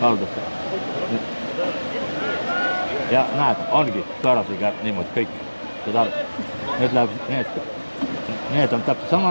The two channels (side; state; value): both; inverted; correlation -1.00